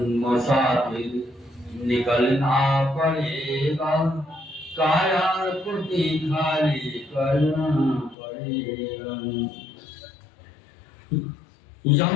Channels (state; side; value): drops out; right; at 8.2 s